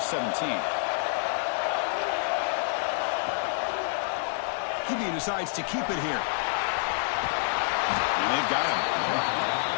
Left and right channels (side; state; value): right; silent; digital silence